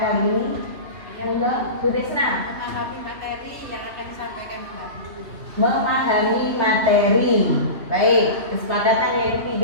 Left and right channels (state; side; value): late; left; 3.0 ms